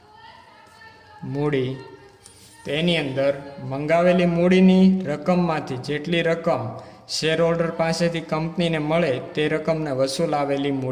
મૂડી તો એની અંદર મંગાવેલી મૂડીની રકમમાંથી જેટલી રકમ શેર હોલ્ડર પાસેથી કંપનીને મળે તે રકમને વસૂલ આવેલી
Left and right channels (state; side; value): identical; both; correlation 1.00